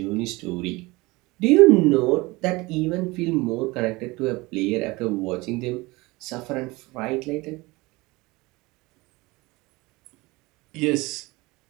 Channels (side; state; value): left; quieter; 22.5 dB